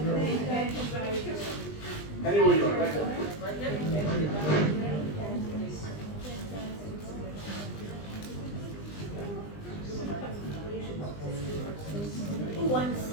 Anywhere you are, right? Who wants to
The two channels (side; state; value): right; late; 20 ms